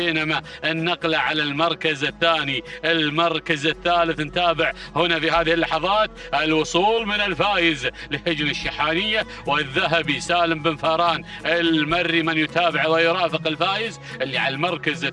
النقلة على المركز الثاني. المركز الثالث نتابع هنا في هذه اللحظات الوصول من الفائز لهجن الشحانية والذهبي سالم بن فاران المري من يتابع ويرافق الفائز اللي على المركز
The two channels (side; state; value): both; identical; correlation 1.00